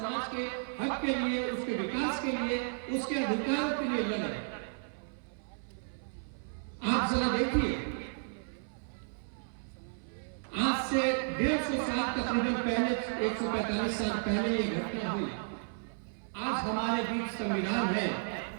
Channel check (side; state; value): left; silent; 56 dB below the other